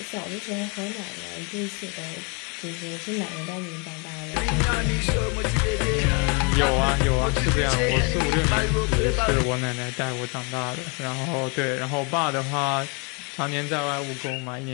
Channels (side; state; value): right; quieter; 33.5 dB